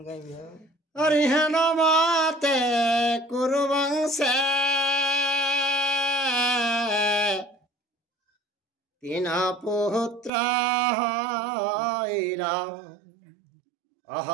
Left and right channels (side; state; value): left; drops out; at 10.3 s